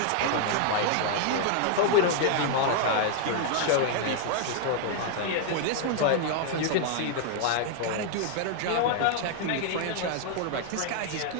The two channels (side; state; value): both; different; correlation 0.00